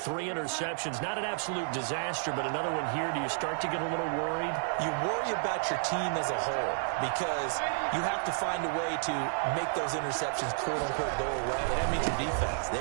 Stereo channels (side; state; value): left; silent; 57 dB below the other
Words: interceptions. Not an absolute disaster, but another one here. Do you start to get a little worried? You worry about your team as a whole because you have to find a way to make those interceptions, quote-unquote, go away. And that means your defense.